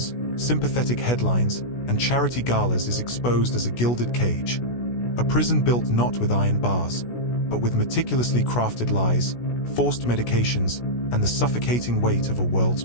sympathetic headlines, and charity galas is exposed as a gilded cage. A prison built not with iron bars, but with meticulously crafted lies, forced medications, and the suffocating weight of a world's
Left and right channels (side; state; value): right; late; 16 ms